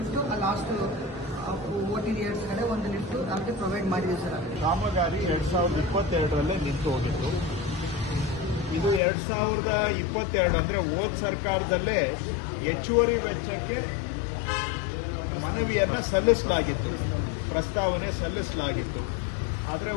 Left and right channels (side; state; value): right; drops out; at 9.0 s